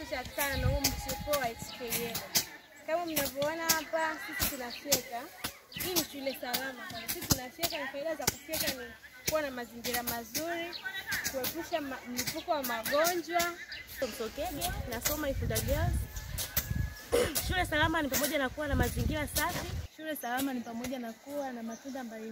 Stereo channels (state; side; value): identical; both; correlation 1.00